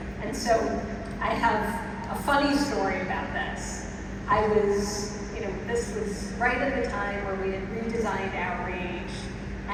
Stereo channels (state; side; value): identical; both; correlation 1.00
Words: And so I have a funny story about this. This was right at the time where we had redesigned outreach,